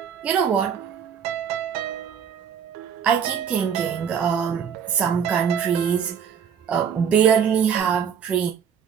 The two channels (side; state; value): left; quieter; 7.8 dB